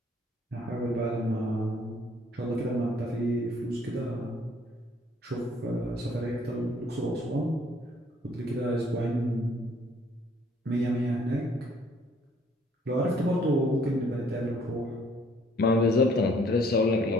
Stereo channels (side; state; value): both; normal; correlation 0.61